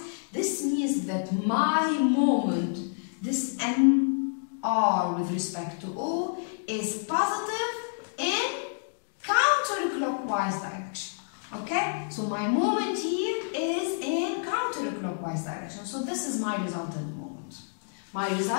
This means that my moment, this mr with respect to O, is positive in counterclockwise direction. Okay, so my moment here is in counterclockwise direction. So this is my resultant moment. My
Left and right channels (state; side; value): silent; right; digital silence